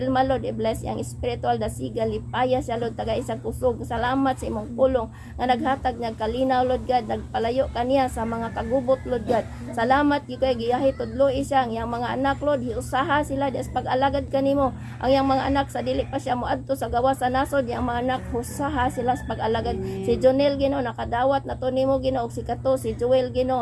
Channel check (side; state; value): both; identical; correlation 1.00